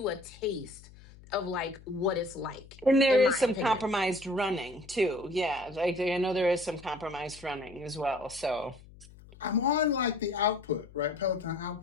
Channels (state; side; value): noise; left; hum, 21 dB below the sound